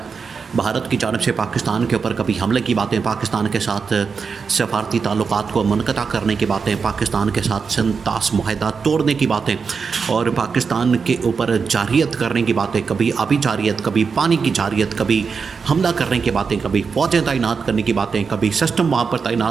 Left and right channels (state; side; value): quieter; left; 5.5 dB